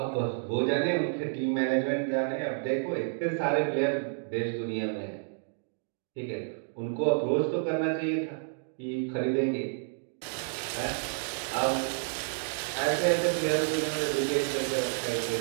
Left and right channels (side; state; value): left; silent; digital silence